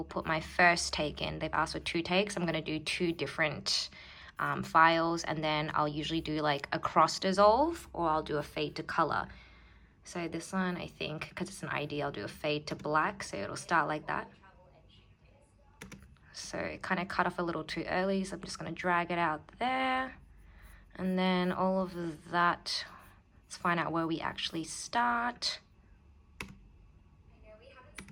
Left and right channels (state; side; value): identical; both; correlation 1.00